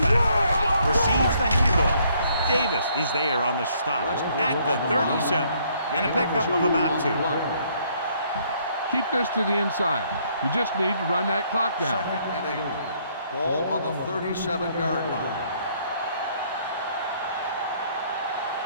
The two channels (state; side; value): inverted; both; correlation -0.66